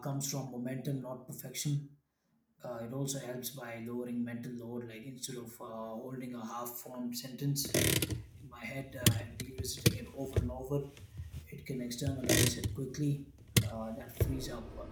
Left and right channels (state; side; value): identical; both; correlation 1.00